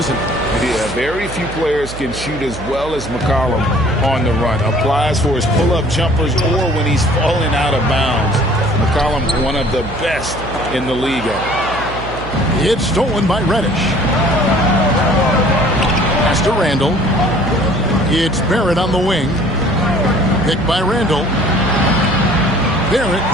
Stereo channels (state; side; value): noise; right; hum, 11 dB below the sound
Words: it? Yeah, very few players can shoot as well as McCollum on the run. Applies for his pull-up jumpers or when he's falling out of bounds. McCollum, one of the best in the league. It's stolen by Reddish. Pass to Randall. It's Barrett on the wing. Picked by Randall. Barrett,